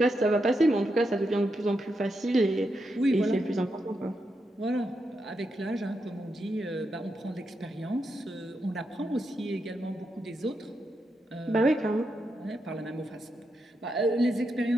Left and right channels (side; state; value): both; normal; correlation 0.84